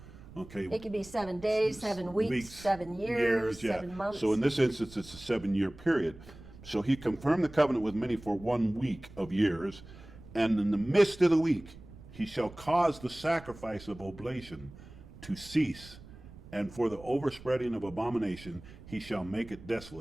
Okay. It could be 7 days, 7 weeks, 7 years, yeah. 7 months. So in this instance, it's a 7-year period. So he confirmed the covenant with many for 1 week of years, and in the midst of the week he shall cause the sacrifice of oblation to cease, and for the overspreading of abomination he shall make it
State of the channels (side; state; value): right; noise; rumble, 18 dB below the sound